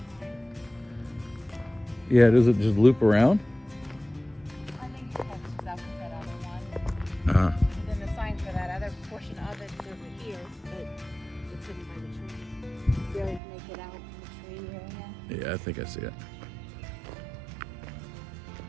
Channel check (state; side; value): drops out; left; at 13.4 s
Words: Yeah, does it just loop around? I think it catches up with that other one. And then the sign for that other portion of it is over here, but it's hidden by the tree. Barely make it out in the tree area. Yeah, I think I see it.